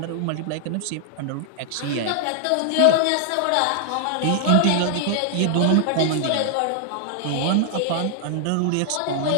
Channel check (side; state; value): both; different; correlation 0.00